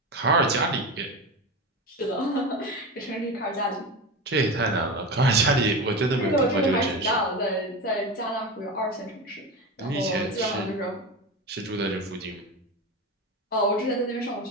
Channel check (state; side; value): normal; both; correlation 0.23